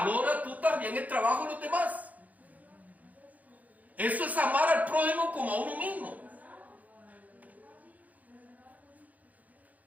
tú también el trabajo de los demás. Eso es amar al prójimo como a uno mismo.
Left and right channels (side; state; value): left; late; 0.077 ms